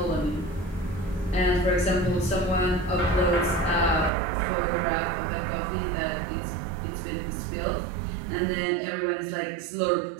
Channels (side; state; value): left; drops out; at 4.1 s